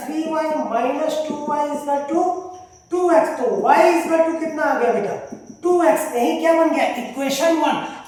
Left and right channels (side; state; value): both; identical; correlation 1.00